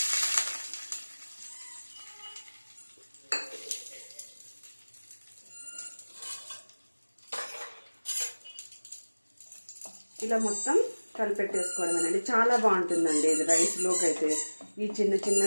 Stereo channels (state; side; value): inverted; both; correlation -1.00